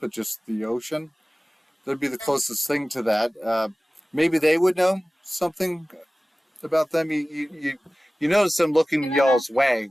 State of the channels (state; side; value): normal; both; correlation 0.97